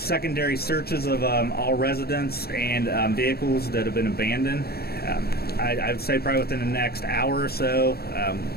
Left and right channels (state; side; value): late; right; 0.46 ms